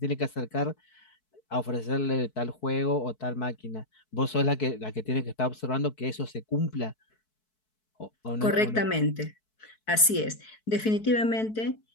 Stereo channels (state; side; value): late; right; 4.6 ms